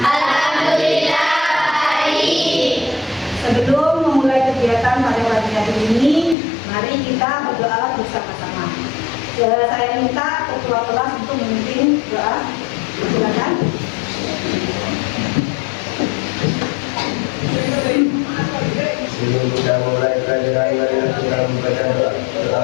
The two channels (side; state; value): right; drops out; at 6.4 s